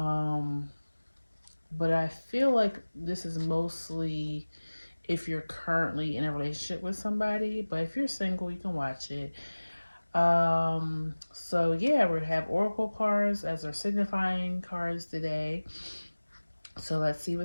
but I feel like this is mostly if you're currently in a relationship with somebody. But if you're single, you can watch it. So yeah, we're gonna have oracle cards as our signifying cards today. So let's see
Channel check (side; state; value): both; inverted; correlation -1.00